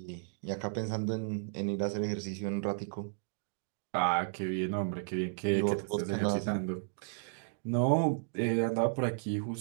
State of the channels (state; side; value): silent; left; digital silence